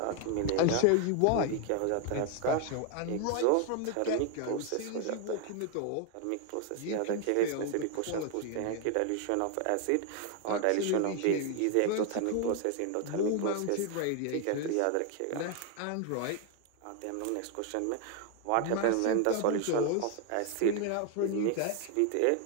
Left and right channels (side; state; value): both; different; correlation 0.01